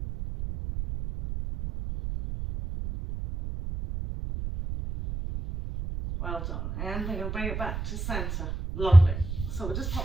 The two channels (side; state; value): right; noise; rumble, 5 dB below the sound